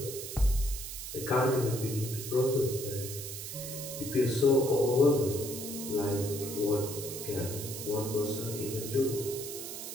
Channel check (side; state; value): right; noise; hiss, 8 dB below the sound